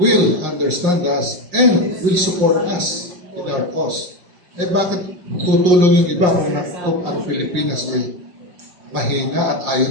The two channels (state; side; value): late; left; 5.6 ms